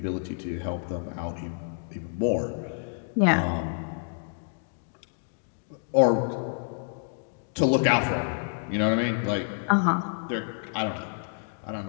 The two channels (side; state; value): right; silent; digital silence